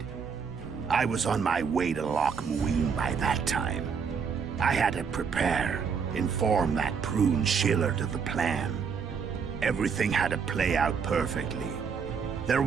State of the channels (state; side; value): quieter; left; 6.2 dB